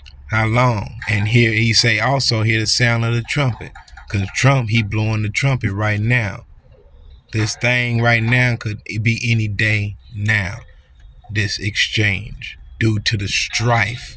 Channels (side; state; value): both; identical; correlation 1.00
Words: How long? And here he say also hear the sound of the trumpet. Because Trump, he blowing the trumpet right now. This thing right now could be any day now. This exchange due to the strife